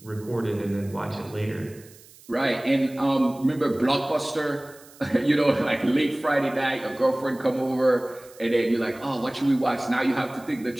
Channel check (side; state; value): right; noise; hiss, 23 dB below the sound